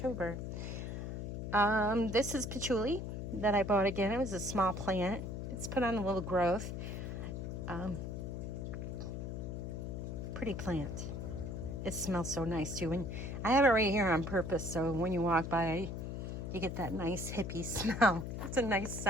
This is patchouli that I bought again. It was a small plant. It's put on a little growth. Pretty plant. It smells so nice too, and I have it right here on purpose, so when you walk by you get that nice hippie smell. It's a nice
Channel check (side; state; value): left; noise; hum, 5 dB below the sound